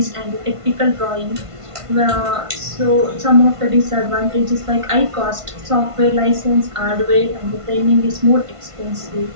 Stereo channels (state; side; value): late; left; 1.5 ms